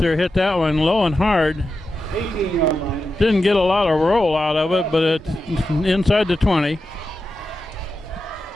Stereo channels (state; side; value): normal; both; correlation 0.90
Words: hit that one low and hard. 18-yard line. Didn't get a lot of roll out of it, but it's inside the 20.